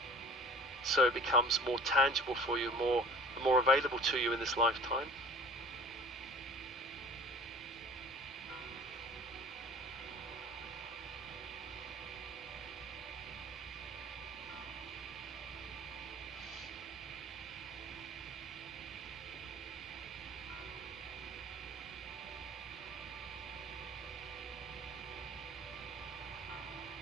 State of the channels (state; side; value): normal; both; correlation 0.44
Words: so it becomes more tangible for you, more available to you in this lifetime.